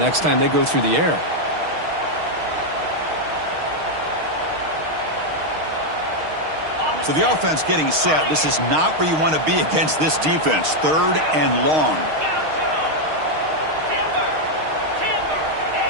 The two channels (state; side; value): late; left; 6.4 ms